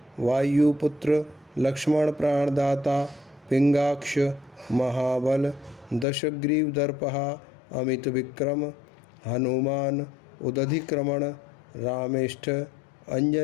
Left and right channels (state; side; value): drops out; right; at 6.1 s